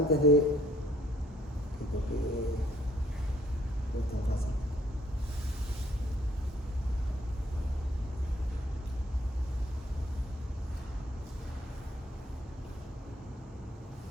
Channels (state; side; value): normal; both; correlation 0.64